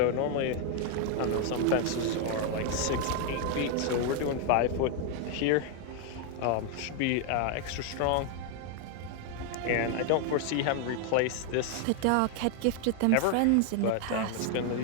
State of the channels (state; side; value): different; both; correlation 0.00